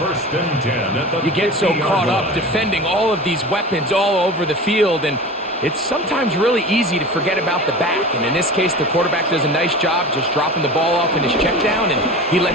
and 10 at the You get so 50-yard caught up line. defending all of these weapons all over the field, and it's sometimes really easy to forget about the back. And in this case, the quarterback does a nice job just dropping the ball off in his check down, and he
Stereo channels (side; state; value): both; normal; correlation 0.34